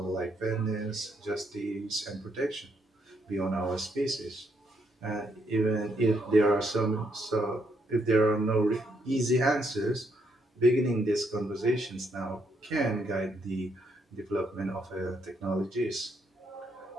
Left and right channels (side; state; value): both; normal; correlation 0.75